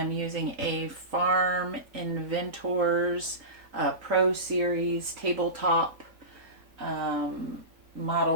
using a Farm Inventors Pro Series tabletop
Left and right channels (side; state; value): left; late; 3.8 ms